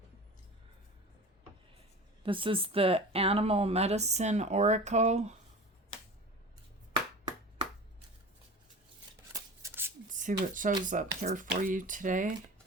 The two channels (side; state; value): both; normal; correlation 0.35